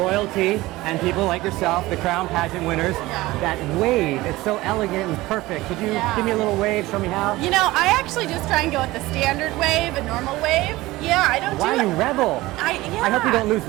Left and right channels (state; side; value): quieter; left; 18.8 dB